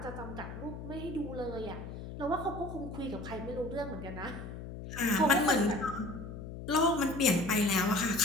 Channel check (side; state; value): left; noise; hum, 9 dB below the sound